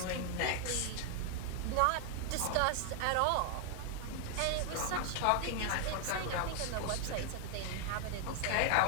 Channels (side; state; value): both; different; correlation 0.00